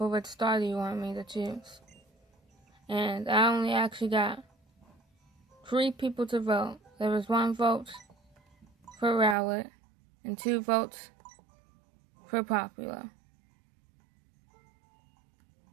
which starter you want me to choose. And I only actually got 3 people to vote. There was 1 vote for Rowlet and 2 votes for Popular.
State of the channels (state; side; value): drops out; left; at 9.3 s